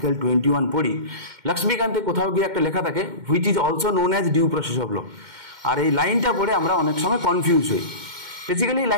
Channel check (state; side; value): late; left; 2.1 ms